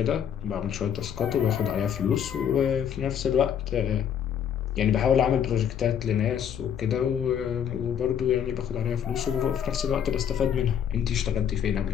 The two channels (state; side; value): quieter; right; 8.7 dB